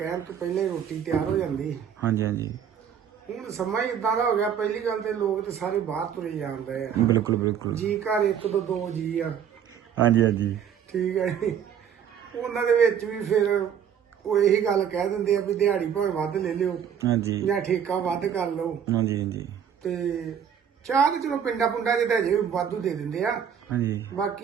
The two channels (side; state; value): left; quieter; 8.4 dB